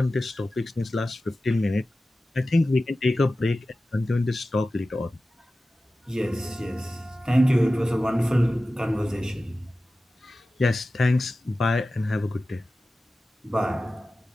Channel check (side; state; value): both; normal; correlation 0.95